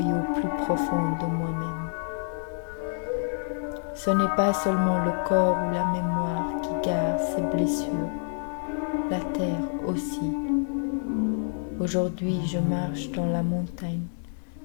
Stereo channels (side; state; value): right; silent; digital silence